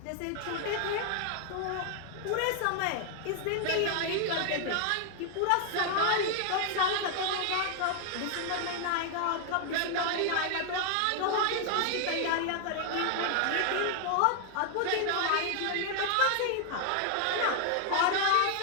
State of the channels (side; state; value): both; different; correlation 0.00